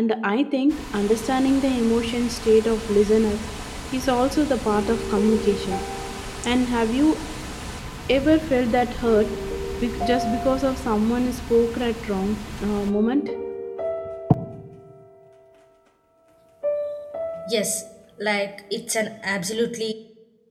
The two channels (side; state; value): both; identical; correlation 1.00